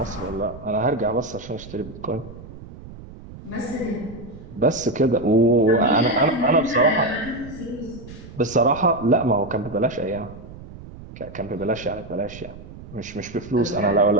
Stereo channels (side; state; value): right; noise; rumble, 16 dB below the sound